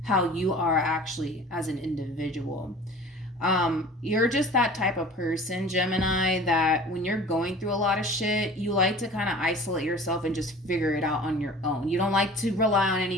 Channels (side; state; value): both; normal; correlation 0.42